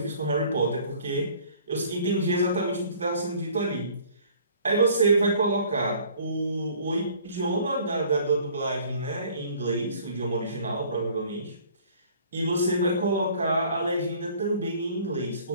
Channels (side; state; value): both; inverted; correlation -0.54